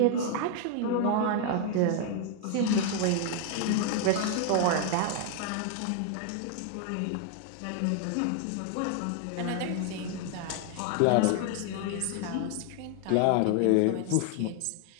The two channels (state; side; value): different; both; correlation 0.00